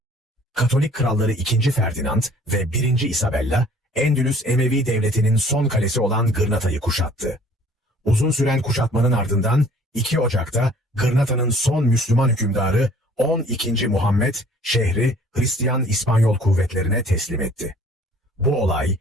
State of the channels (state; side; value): normal; both; correlation 0.54